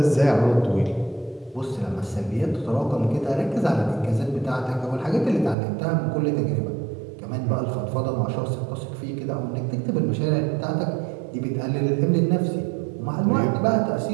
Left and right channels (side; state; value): left; drops out; at 5.6 s